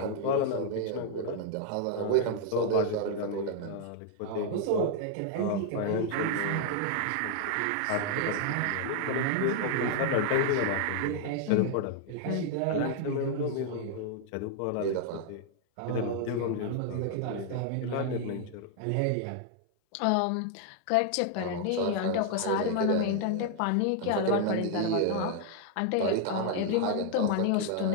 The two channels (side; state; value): both; different; correlation 0.00